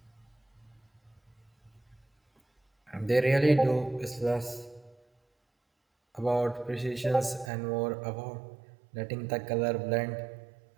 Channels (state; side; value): drops out; left; at 7.5 s